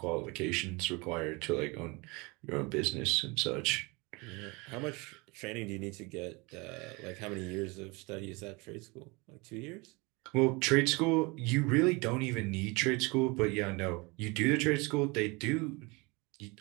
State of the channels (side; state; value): left; quieter; 26.8 dB